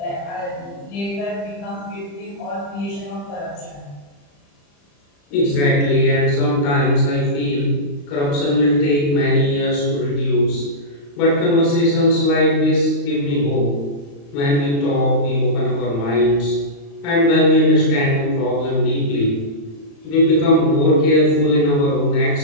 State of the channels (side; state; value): right; late; 35 ms